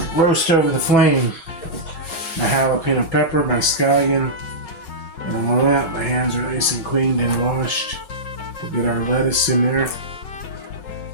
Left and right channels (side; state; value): right; late; 5.4 ms